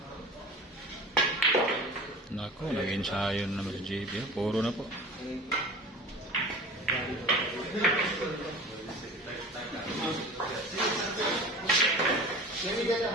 Nako, nag-ensayo na naman si JB ha, puro na po.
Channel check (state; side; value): normal; both; correlation 0.38